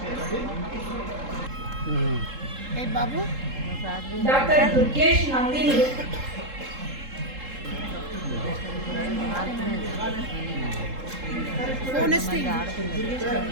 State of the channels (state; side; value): late; left; 3.7 ms